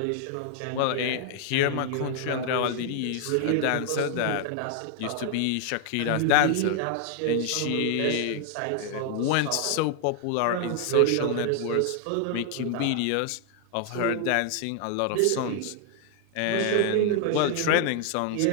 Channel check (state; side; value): different; both; correlation 0.00